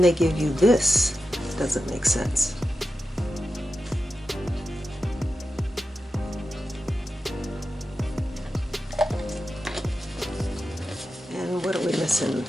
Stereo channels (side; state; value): both; normal; correlation 0.91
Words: give you this. It doesn't make sense. And what are we missing